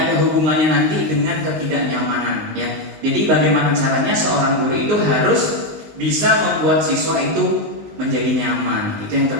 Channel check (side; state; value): left; late; 19 ms